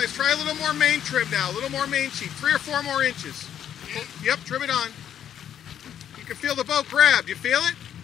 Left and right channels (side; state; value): right; quieter; 9.8 dB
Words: try a little more main trim now, a little more main sheet, 3 or 4 more inches. Yep, trim it on. You can feel the boat grab, you feel it?